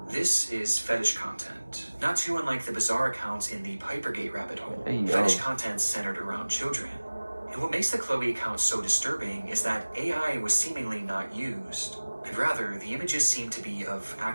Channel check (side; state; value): both; inverted; correlation -1.00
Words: This is fetish content, not too unlike the bizarre accounts in the Pipergate rabbit hole. Hey, yo. Fetish content centered around children. And what makes the Chloe account so disturbing is that AI was seemingly not used, and rather the images seem to be of